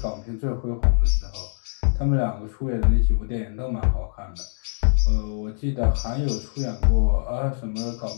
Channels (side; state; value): right; silent; digital silence